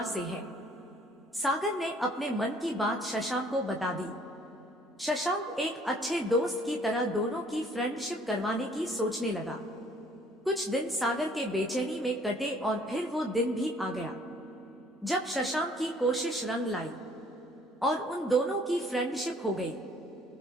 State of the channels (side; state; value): both; normal; correlation 0.59